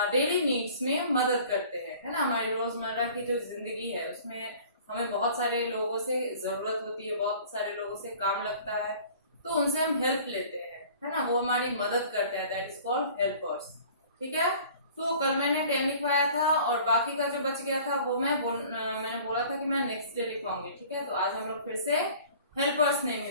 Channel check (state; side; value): inverted; both; correlation -0.48